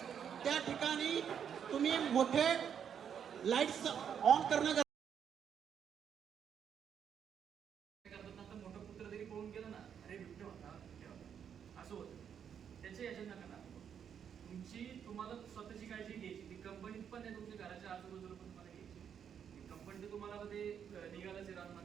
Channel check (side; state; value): left; quieter; 8.1 dB